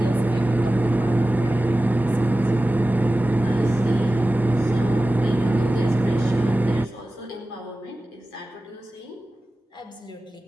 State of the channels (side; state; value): both; normal; correlation 0.95